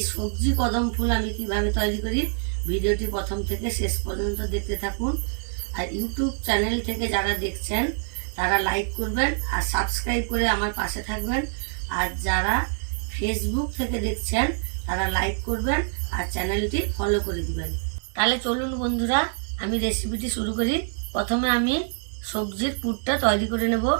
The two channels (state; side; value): silent; left; 61 dB below the other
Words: সবজি কদম ফুল আমি কিভাবে তৈরি করি, ভিডিওটি প্রথম থেকে শেষ পর্যন্ত দেখতে থাকুন। আর ইউটিউব চ্যানেল থেকে যারা দেখছেন তারা লাইক করবেন আর সাবস্ক্রাইব করে আমার পাশে থাকবেন। আর যারা ফেসবুক থেকে দেখছেন তারা লাইক করবেন আর চ্যানেলটি ফলো করে দিবেন। তাহলে চলুন বন্ধুরা, আমি রেসিপিটি শুরু করি। প্রথমে আমি সবজির পুরটা তৈরি করে নেব।